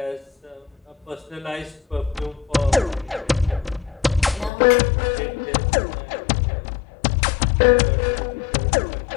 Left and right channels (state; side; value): drops out; right; at 4.5 s